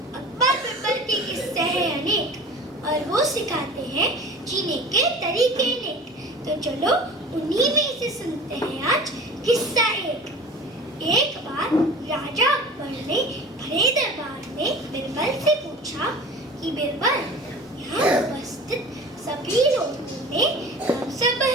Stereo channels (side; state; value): both; normal; correlation 0.39